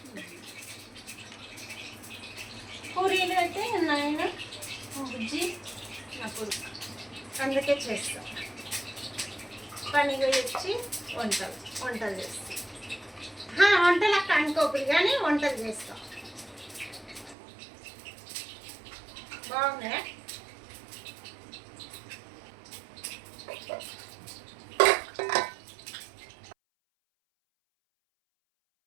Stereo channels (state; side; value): drops out; left; at 17.4 s